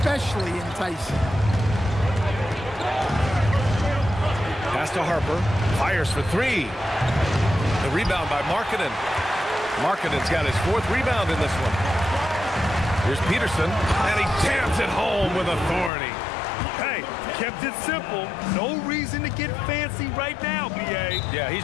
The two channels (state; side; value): drops out; right; at 15.9 s